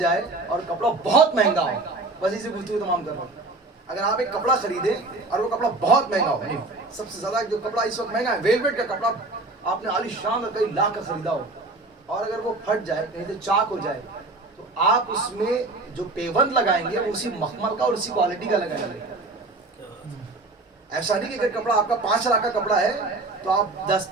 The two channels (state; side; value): quieter; left; 3.1 dB